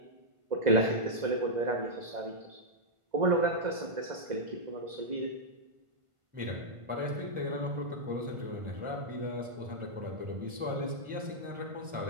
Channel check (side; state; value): left; late; 1.5 ms